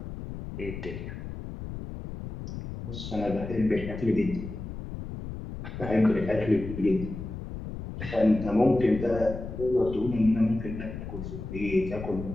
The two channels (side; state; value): left; noise; rumble, 9 dB below the sound